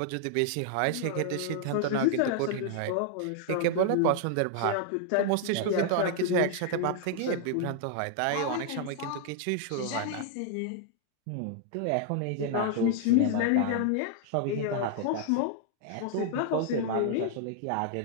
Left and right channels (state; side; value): different; both; correlation 0.00